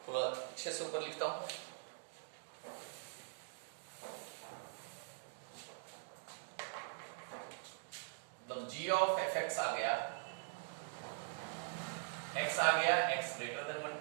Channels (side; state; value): left; silent; digital silence